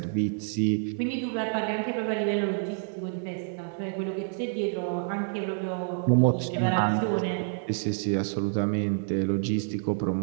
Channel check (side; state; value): left; silent; 59 dB below the other